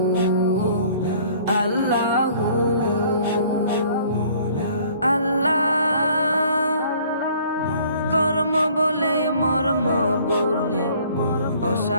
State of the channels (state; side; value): inverted; both; correlation -0.56